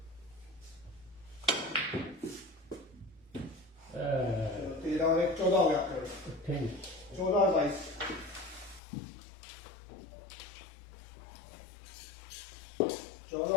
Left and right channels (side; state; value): right; drops out; at 8.8 s